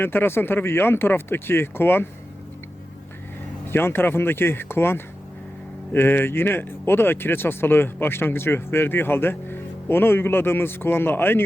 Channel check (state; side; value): normal; both; correlation 0.92